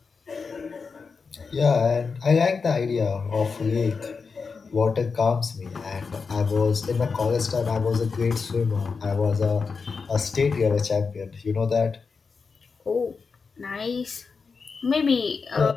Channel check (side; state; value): right; quieter; 5.0 dB